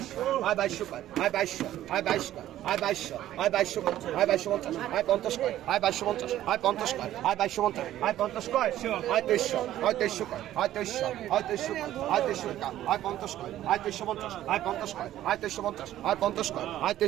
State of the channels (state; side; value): quieter; left; 13.1 dB